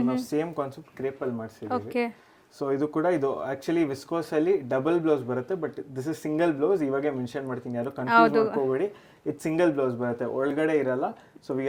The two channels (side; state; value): both; identical; correlation 1.00